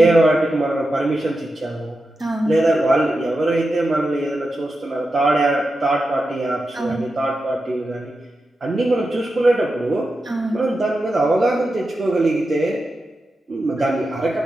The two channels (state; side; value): normal; both; correlation 0.90